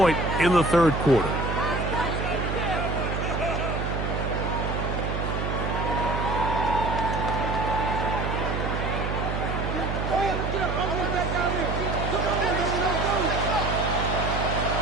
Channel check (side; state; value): right; noise; hum, 2 dB below the sound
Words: in the 3rd quarter.